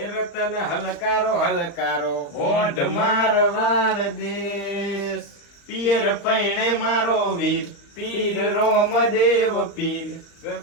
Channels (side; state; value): right; late; 35 ms